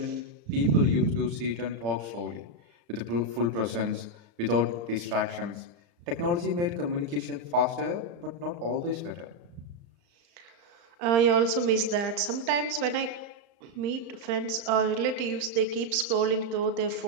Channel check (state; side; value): late; left; 35 ms